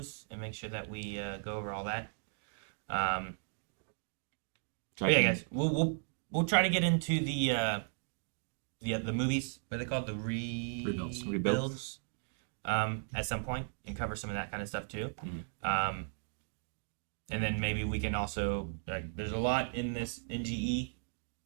and make sure that we go over all that. But yeah, guys, we'll try to get into the movies. What are they called? The rebuilds. At some point and cover some of that kind of stuff too. And then maybe we can also there's a lot in this NGE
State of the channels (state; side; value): silent; left; digital silence